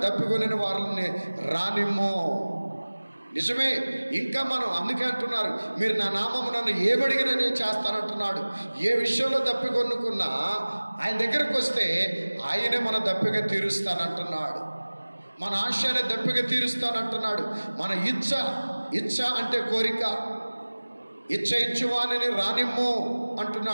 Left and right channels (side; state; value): both; inverted; correlation -1.00